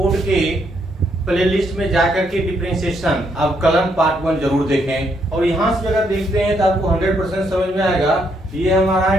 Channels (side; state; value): both; normal; correlation 0.74